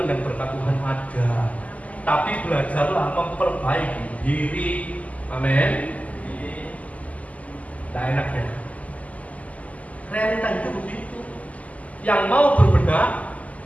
dan berkat Tuhan ada. Tapi belajarlah memperbaiki diri. Amin. Tidak enak ya. Realita itu begitu. Yang mau berbenah,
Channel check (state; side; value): late; right; 0.072 ms